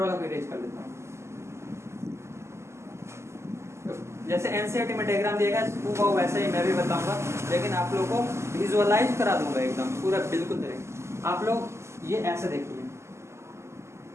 को इरेज कर देता हूँ। जैसे एनसीईआरटी में डायग्राम दिएगा वो वैसे ही मैं भी बताऊंगा, लेकिन आप लोगों को विजुअलाइज करा दूंगा एकदम पूरा बिल्कुल तरीके। आप लोग ये ऐसे देखिए,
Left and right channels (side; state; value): left; late; 0.13 ms